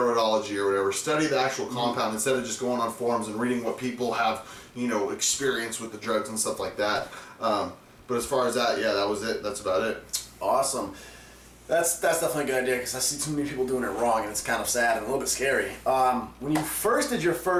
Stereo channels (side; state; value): both; identical; correlation 1.00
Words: or whatever. Study the actual compound instead of just going on forums and reading what people have, experience with the drugs and stuff like that. But as far as that, yeah, that was it. That's about it. Awesome. That's definitely a good idea because I see too many people doing it wrong and it's kind of sad and a little bit scary. When you first did your